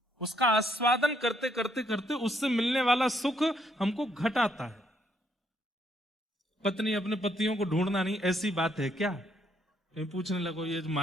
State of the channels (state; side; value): normal; both; correlation 0.72